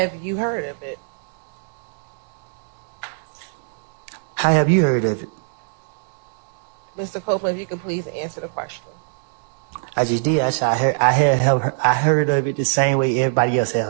you heard of it? How have you heard of it? Mr. Copeland, if you could please answer the question. I just did. I said I heard of it the same way everybody else had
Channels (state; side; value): silent; left; digital silence